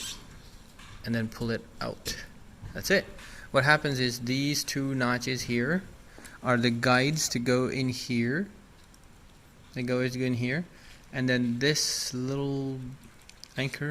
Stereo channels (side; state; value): both; identical; correlation 1.00